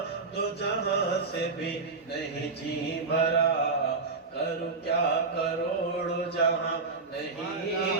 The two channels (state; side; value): quieter; left; 4.1 dB